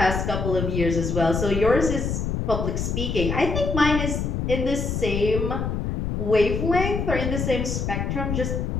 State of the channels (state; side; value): noise; left; rumble, 1 dB below the sound